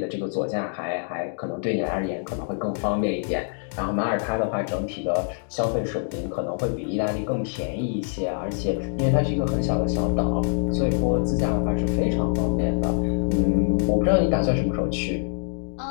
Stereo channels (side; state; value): right; silent; digital silence